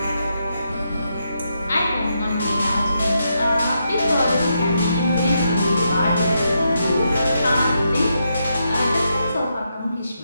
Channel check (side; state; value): both; inverted; correlation -0.82